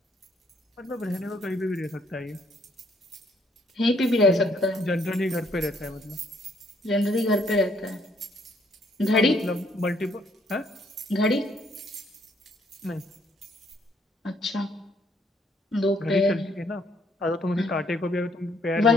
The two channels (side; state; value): both; normal; correlation 0.68